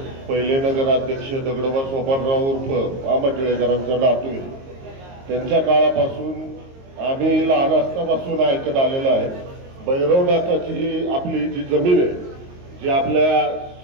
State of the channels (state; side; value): late; left; 22 ms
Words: पहिले नगराध्यक्ष दगडोबा सोपानराव उर्फ मामा टिळेकरांचा नातू आहे. त्यांच्या काळापासून आम्ही लहान असतापासून ऐकत आलेलं आहे. भैरवनाथाची आपली जी जमीन आहे, जी आपल्या